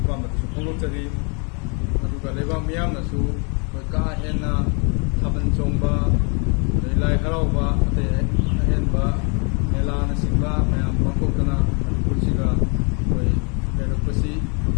ꯐꯣꯡꯗꯣꯛꯆꯔꯤ꯫ ꯑꯗꯨꯒ ꯂꯩꯕꯥꯛ ꯃꯤꯌꯥꯝꯅꯁꯨ ꯑꯩꯈꯣꯏ ꯀꯥ ꯍꯦꯟꯅ ꯊꯥꯕꯜ ꯆꯣꯡꯕ, ꯑꯗꯩ ꯂꯥꯏ ꯍꯔꯥꯎꯕ, ꯑꯇꯩ ꯑꯍꯦꯟꯕ ꯃꯦꯂꯥꯅꯆꯤꯡꯕ ꯃꯌꯥꯝ ꯄꯥꯡꯊꯣꯛꯇꯅ ꯃꯅꯤꯄꯨꯔꯁꯤꯒ ꯑꯩꯈꯣꯏ ꯂꯩꯔꯛꯄꯁꯤ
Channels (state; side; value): quieter; right; 35.1 dB